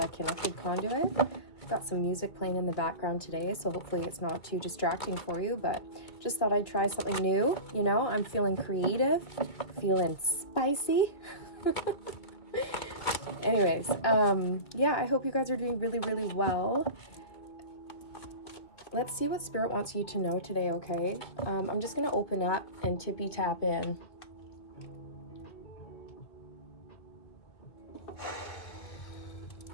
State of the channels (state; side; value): late; right; 2.3 ms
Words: Connected Conduit. I've got some music playing in the background today, so hopefully it's not too distracting for you, but just thought I'd try something new. You know, I'm feeling creative, feeling spicy. Anyways, yeah, I hope you guys are doing really, really well. Let's see what Spirit wants you to know today, okay? I'm just going to open up and tippy tap in.